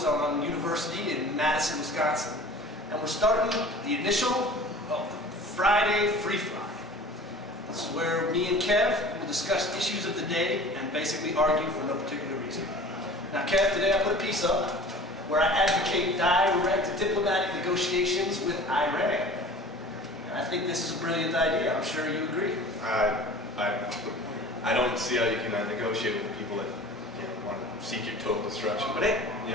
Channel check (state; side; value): normal; both; correlation 0.42